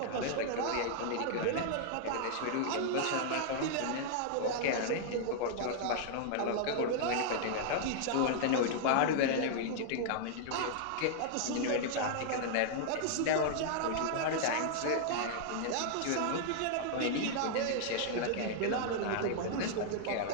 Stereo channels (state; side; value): different; both; correlation -0.01